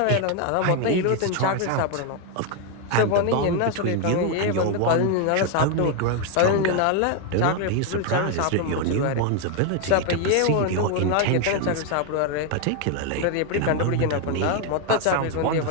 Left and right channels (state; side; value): different; both; correlation 0.01